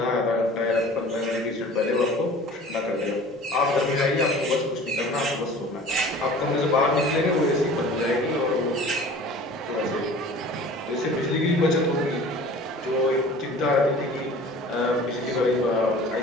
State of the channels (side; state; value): both; normal; correlation 0.44